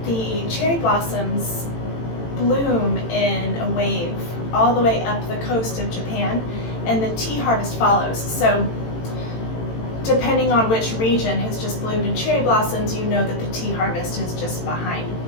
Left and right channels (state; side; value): late; right; 18 ms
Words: the cherry blossoms bloom in a wave all the way up the coast of Japan, and the tea harvest follows. So depending on which region has just bloomed in cherry blossoms, you know that the tea harvest is just behind.